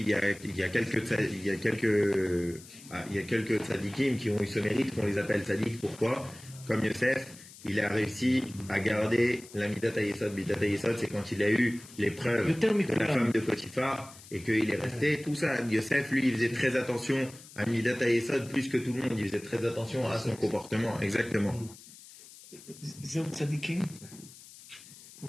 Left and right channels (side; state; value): left; noise; hiss, 19 dB below the sound